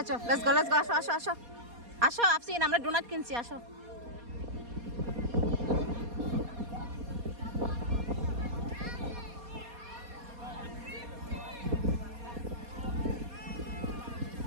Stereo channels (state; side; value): late; left; 4.2 ms